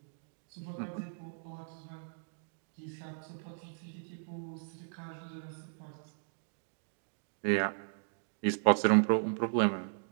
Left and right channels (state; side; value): silent; left; digital silence